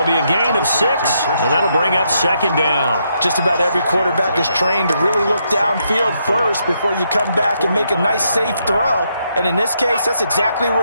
be a gain of 6, and that'll bring up 2nd down. Just about every quarterback is trained to really look downfield first before you come back and make a nice, safe throw. And in this case, that's exactly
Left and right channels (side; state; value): both; inverted; correlation -0.77